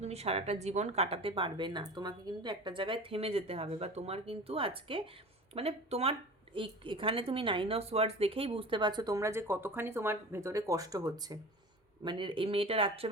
তুমি সারাটা জীবন কাটাতে পারবে না। তোমাকে কিন্তু একটা জায়গায় থেমে যেতে হবে, বা তোমার কিন্তু আজকে মানে তোমার এখানে তুমি 9 অফ ওয়ার্ডস দেখেই বুঝতে পারছো তোমরা যে কতখানি তোমার ভেতরে কষ্ট হচ্ছে। মানে এই মেয়েটা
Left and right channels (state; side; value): normal; both; correlation 0.36